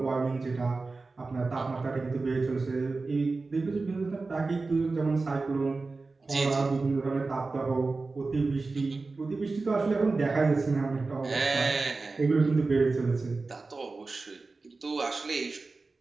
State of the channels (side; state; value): left; quieter; 3.8 dB